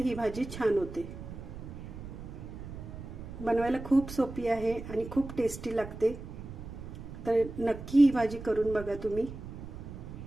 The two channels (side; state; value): right; noise; rumble, 11 dB below the sound